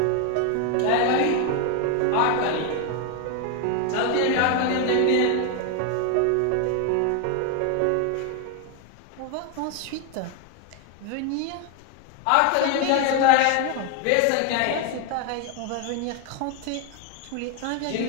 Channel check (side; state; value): both; different; correlation 0.01